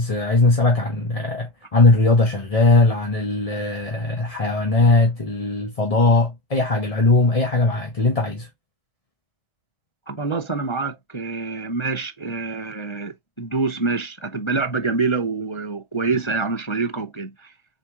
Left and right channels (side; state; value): right; late; 1.3 ms